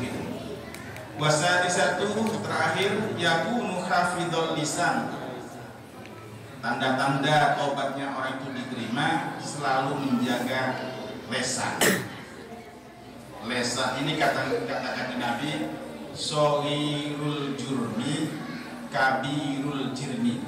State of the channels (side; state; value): both; identical; correlation 1.00